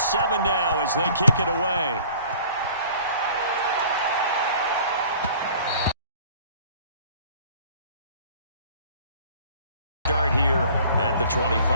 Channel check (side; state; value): both; inverted; correlation -0.50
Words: now as they kick it away. Start here at the